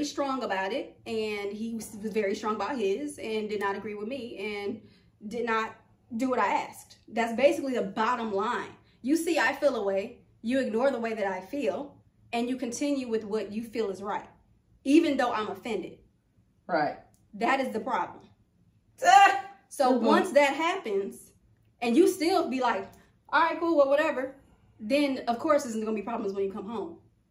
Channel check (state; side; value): identical; both; correlation 1.00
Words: strong about it, and he was very strong about his, and did not agree with me, and did not do what I asked. That's basically the bottom line. You see, I feel a way. you ignore the way that I feel, and you continue with what you feel is right, even though I'm offended. Right. That is the problem. So once that happens, and you still be like, all right, cool, well, whatever, then of course there's going to be problems when you come home.